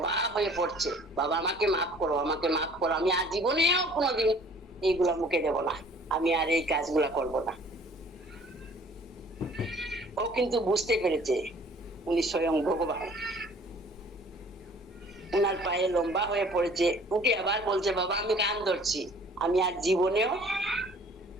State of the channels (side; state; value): both; normal; correlation 0.53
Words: হয়ে পড়ছে, বাবা আমাকে মাফ করো, আমাকে মাফ করো, আমি আর জীবনেও কোনোদিন এইগুলা মুখে দেব না, আমি আর এই কাজগুলা করব না। ও কিন্তু বুঝতে পেরেছে উনি স্বয়ং ভগবান। উনার পায়ে লম্বা হয়ে পড়েছে, উঠে আবার বলছে, বাবা আমি কান ধরছি, আমি আর জীবনেও